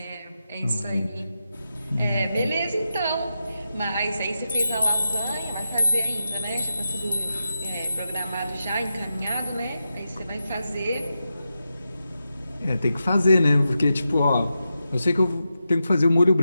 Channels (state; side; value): inverted; both; correlation -0.89